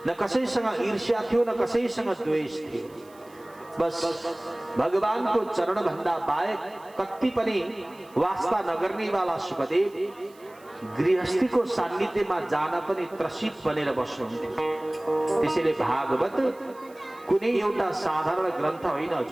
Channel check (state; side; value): noise; right; hiss, 28 dB below the sound